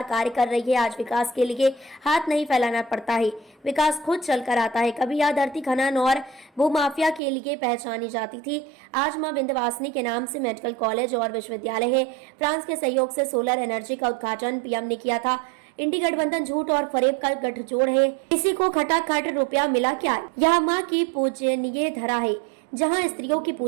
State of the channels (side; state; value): left; drops out; at 7.2 s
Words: कार्य कर रही है। आज विकास के लिए हाथ नहीं फैलाना पड़ता है, विकास खुद चलकर आता है। कभी यह धरती खनन और भूमाफिया के लिए पहचानी जाती थी। आज मां विंध्यवासिनी के नाम से मेडिकल कॉलेज और विश्वविद्यालय है। फ्रांस के सहयोग से सोलर एनर्जी का उद्घाटन पीएम ने किया था। इंडी गठबंधन झूठ और फरेब का गठजोड़ है। किसी को खटाखट रुपया मिला क्या? यह माँ की पूजनीय धरा है। जहाँ स्त्रियों की